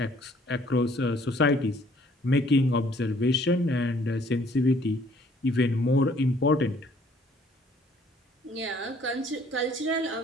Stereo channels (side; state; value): both; normal; correlation 0.60